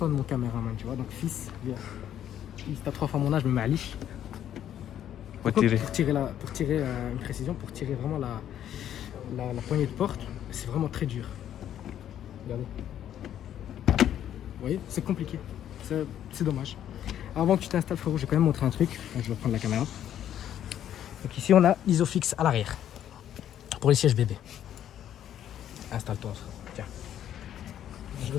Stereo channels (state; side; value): quieter; right; 10.7 dB